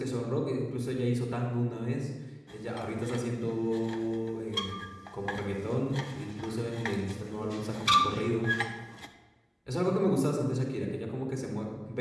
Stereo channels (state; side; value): identical; both; correlation 1.00